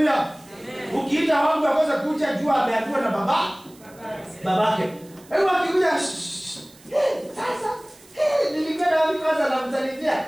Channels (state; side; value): noise; right; hiss, 25 dB below the sound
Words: Ukiita wangu akose kuja jua ameambiwa na babake. Kwa hivyo akikuja sasa nilikwenda wapi kwanza namsalimia.